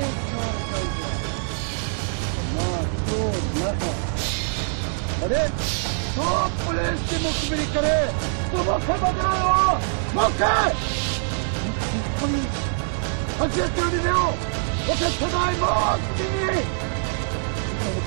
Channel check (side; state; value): left; silent; digital silence